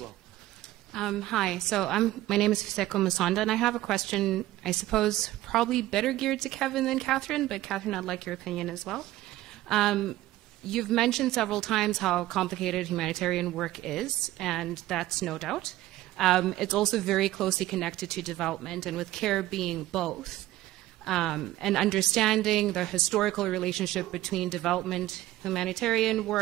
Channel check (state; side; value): quieter; left; 15.7 dB